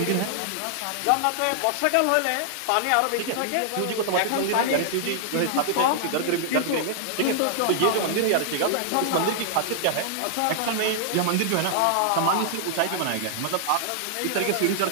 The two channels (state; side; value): different; both; correlation -0.01